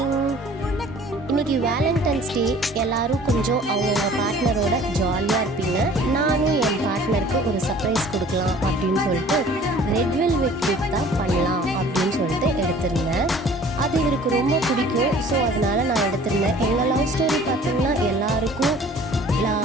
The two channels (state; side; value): normal; both; correlation 0.50